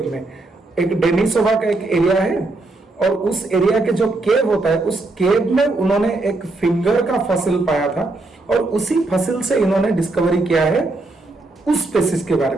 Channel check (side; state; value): left; quieter; 3.1 dB